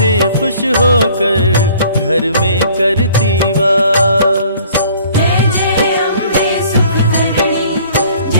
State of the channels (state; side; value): inverted; both; correlation -0.54